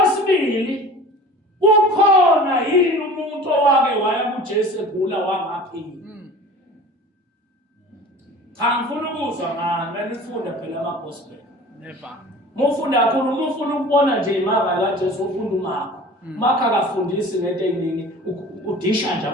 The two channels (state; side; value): normal; both; correlation 0.41